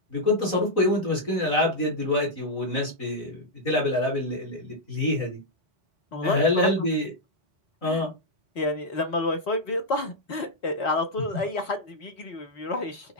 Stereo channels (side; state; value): right; late; 4.0 ms